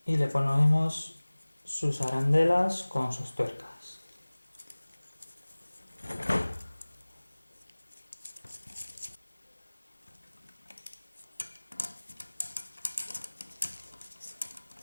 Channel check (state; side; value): inverted; both; correlation -1.00